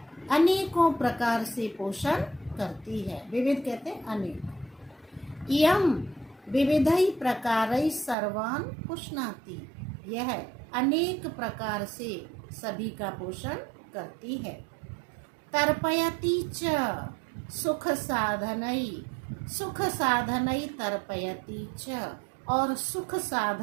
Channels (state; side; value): drops out; left; at 8.2 s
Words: अनेकों प्रकार से पोषण करती है। विविध कहते हैं अनेक। इयम विविधै प्रकारै सर्वान् पुष्णाति। यह अनेक प्रकार से सभी का पोषण करती है। तर्पयति च सुख साधनै तर्पयति च, और सुख